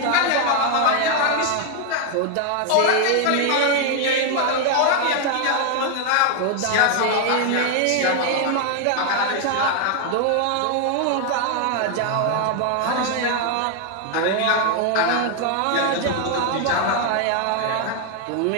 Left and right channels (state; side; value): different; both; correlation 0.00